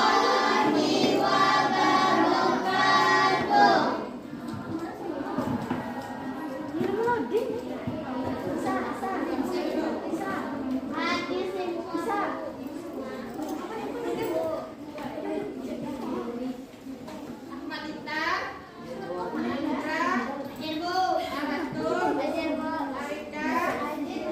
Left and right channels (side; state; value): both; identical; correlation 1.00